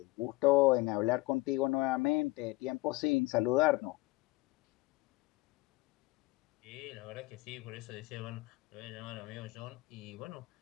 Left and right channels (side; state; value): right; quieter; 21.0 dB